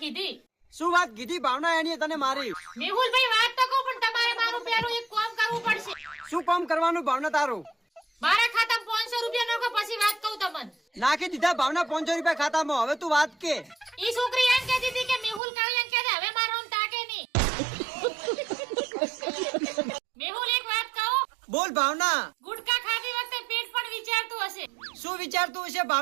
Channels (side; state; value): left; drops out; at 15.4 s